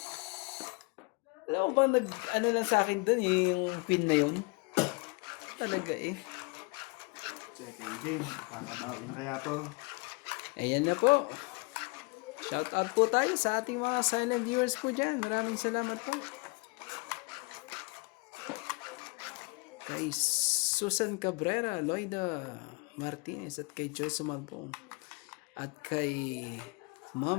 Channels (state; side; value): quieter; right; 29.1 dB